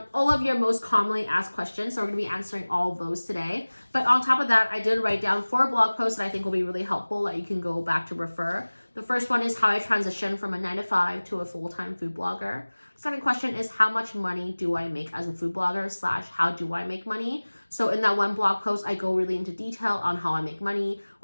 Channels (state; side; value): inverted; both; correlation -1.00